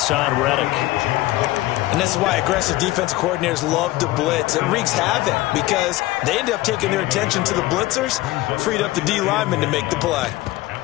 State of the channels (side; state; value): right; quieter; 17.9 dB